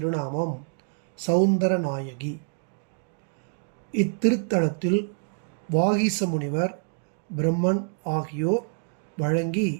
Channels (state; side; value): silent; left; 60 dB below the other